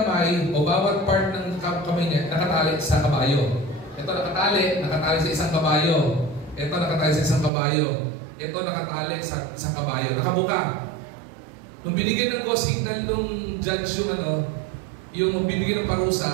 o bawat part ng kamay niya nakatali sa kabayo. Ito nakatali sa isang kabayo. Ito nakatali sa isang kabayo. Ito nakatali sa isang kabayo. Nakabuka. Nung binigyan ng go signal nung judge yung bibigyan ng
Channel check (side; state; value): left; drops out; at 7.5 s